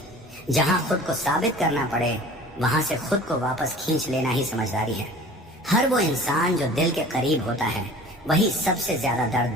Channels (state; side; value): normal; both; correlation 0.44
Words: जहां खुद को साबित करना पड़े, वहां से खुद को वापस खींच लेना ही समझदारी है। हर वो इंसान जो दिल के करीब होता है, वही सबसे ज्यादा दर्द